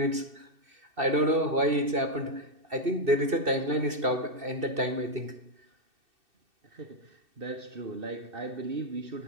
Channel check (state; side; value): late; left; 2.6 ms